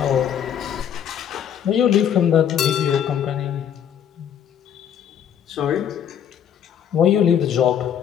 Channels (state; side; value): quieter; right; 9.0 dB